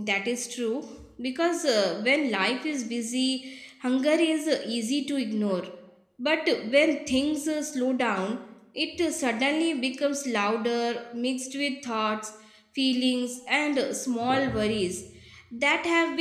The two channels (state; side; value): identical; both; correlation 1.00